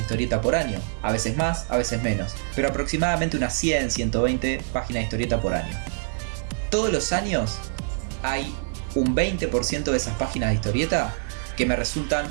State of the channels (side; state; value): left; silent; digital silence